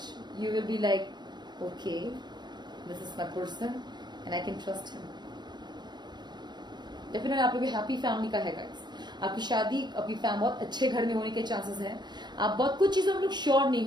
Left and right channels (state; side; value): late; left; 0.21 ms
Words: you will be like okay this is my person and I can trust him. Definitely आप लोग हैप्पी फैमिली का है गाइस, आपकी शादी आपकी बहुत अच्छे घर में होने के चांसेस हैं। आप बहुत कुछ चीजों में लोग श्योर नहीं